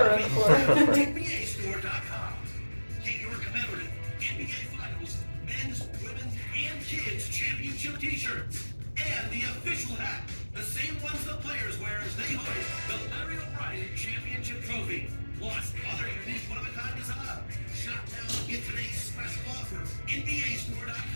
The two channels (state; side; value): inverted; both; correlation -1.00